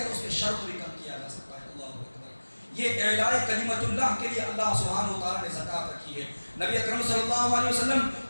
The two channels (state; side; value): inverted; both; correlation -1.00